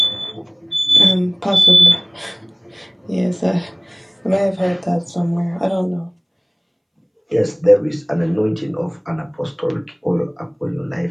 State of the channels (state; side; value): identical; both; correlation 1.00